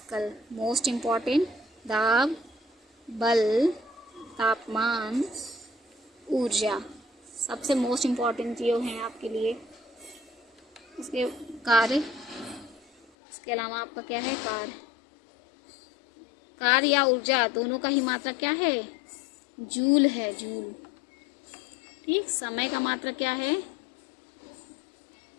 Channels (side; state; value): right; drops out; at 13.1 s